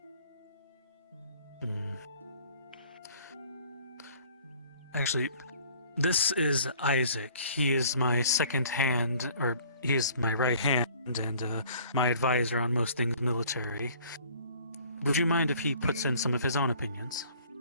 Actually, this is Isaac. He is my second hand, or he is my right hand and my advisor on most things military. Would you mind if he puts in some of his own opinions?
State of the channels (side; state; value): both; inverted; correlation -0.54